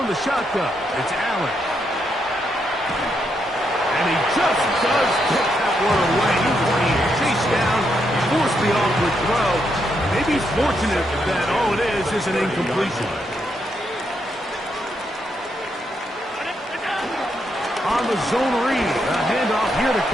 the shotgun, it's Allen. And he just does get that one away. He's being chased down, forced the awkward throw. Maybe he's fortunate that all it is an incompletion. On the zone read, a handoff here to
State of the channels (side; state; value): both; normal; correlation 0.79